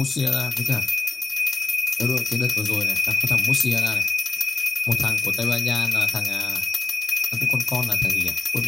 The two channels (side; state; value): right; quieter; 4.3 dB